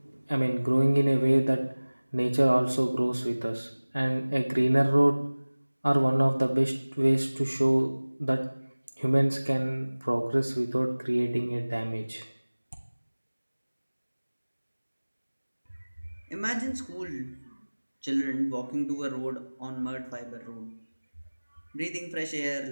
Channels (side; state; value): both; inverted; correlation -1.00